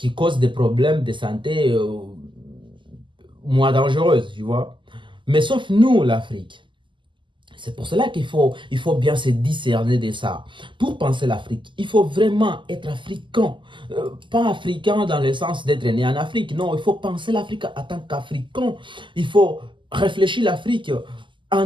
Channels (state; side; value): late; left; 0.24 ms